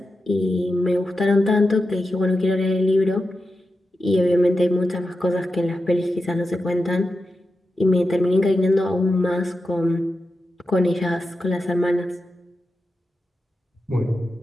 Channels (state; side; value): normal; both; correlation 0.90